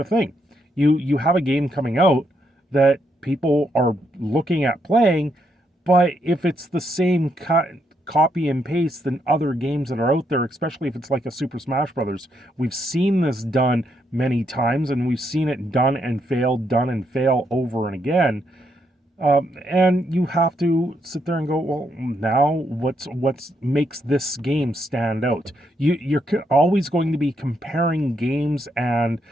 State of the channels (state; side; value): normal; both; correlation 0.77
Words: of thing. You have a game coming out that people are looking at playing, but if it's the same copy and paste than other games that are out there, especially if it's like a Super Smash Brothers. We've seen this done many times, and we've seen it done and fail over and again. And you have to sit there and go, well, now what's makes this game stand out? You're always going to be comparing games and